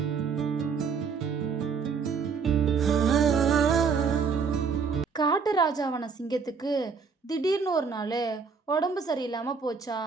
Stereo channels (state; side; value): quieter; left; 5.6 dB